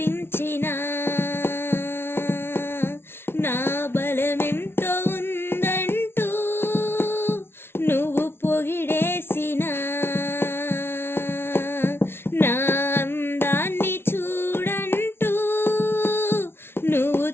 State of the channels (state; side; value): late; right; 0.12 ms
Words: నా బలమెంతో ఉందంటూ నువ్వు పొగిడేసినా, నా అందాన్ని చూడంటూ నువ్వు